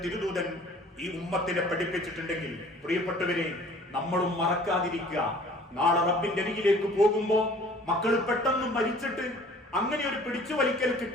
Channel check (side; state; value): both; normal; correlation 0.51